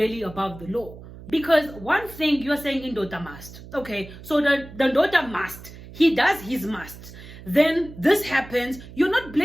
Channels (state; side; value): noise; right; hum, 16 dB below the sound